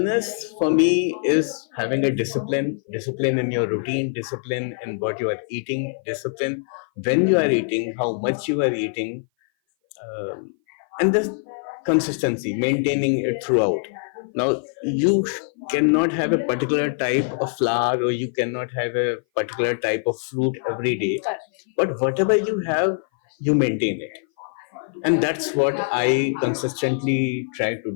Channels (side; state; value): right; silent; 58 dB below the other